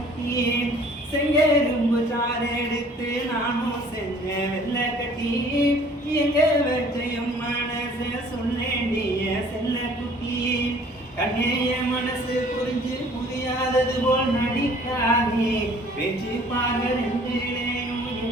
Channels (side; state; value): both; normal; correlation 0.54